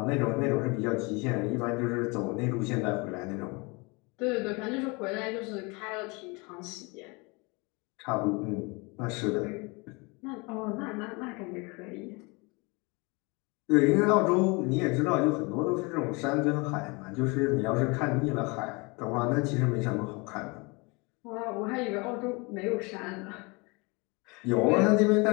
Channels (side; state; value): right; quieter; 28.0 dB